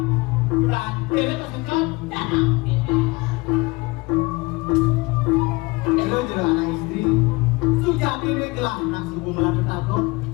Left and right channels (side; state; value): right; quieter; 24.2 dB